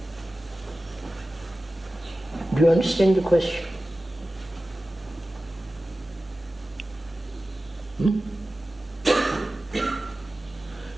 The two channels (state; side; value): normal; both; correlation 0.95